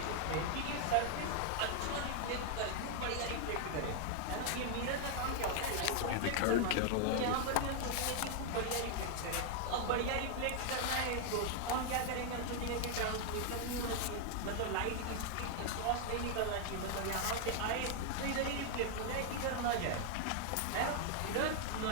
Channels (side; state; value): both; different; correlation 0.00